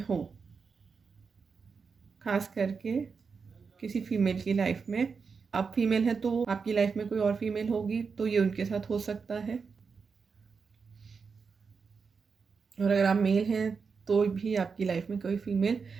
खास करके किसी फीमेल की लाइफ में। आप फीमेल हैं तो आपकी लाइफ में कोई और फीमेल होगी, तो ये उनके साथ हो सकता है। और अगर आप मेल हैं तो भी आपकी लाइफ में कोई फीमेल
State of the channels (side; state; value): left; quieter; 5.3 dB